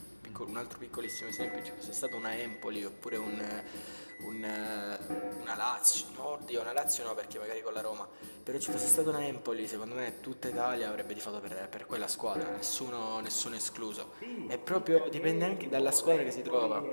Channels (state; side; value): inverted; both; correlation -1.00